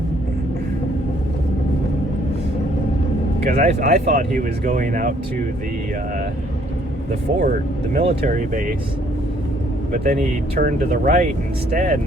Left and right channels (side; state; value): both; normal; correlation 0.64